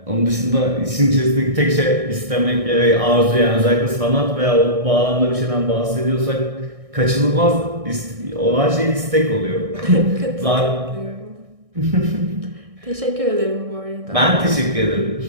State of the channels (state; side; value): late; left; 1.6 ms